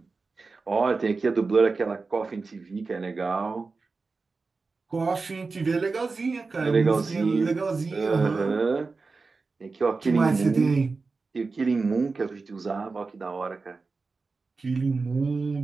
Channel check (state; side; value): quieter; left; 4.1 dB